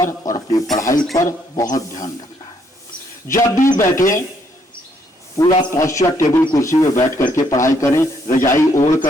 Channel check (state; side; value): normal; both; correlation 0.71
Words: और अपनी पढ़ाई पर बहुत ध्यान रखना है। जब भी बैठे पूरा पॉस्चर, टेबल कुर्सी में बैठ करके पढ़ाई करें। रजाई ओढ़